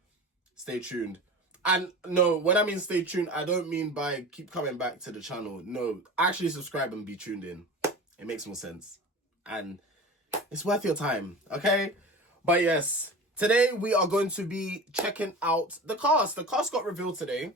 stay tuned. And no, when I mean stay tuned, I don't mean by keep coming back to the channel. No, actually subscribe and be tuned in. It makes more sense. And it's worth your time, okay? But yes, today we are going to be checking out the cast. The cast got revealed today.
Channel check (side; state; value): both; normal; correlation 0.34